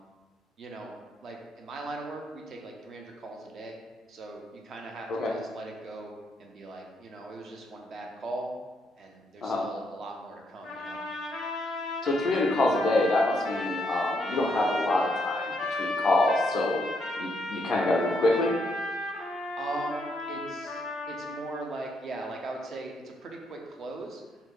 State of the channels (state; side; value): normal; both; correlation 0.76